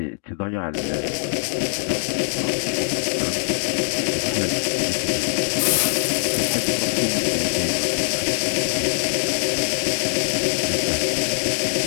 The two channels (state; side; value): silent; right; digital silence